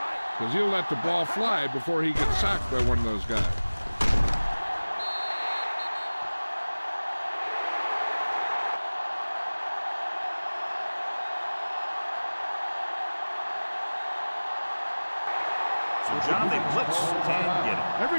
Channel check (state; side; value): inverted; both; correlation -1.00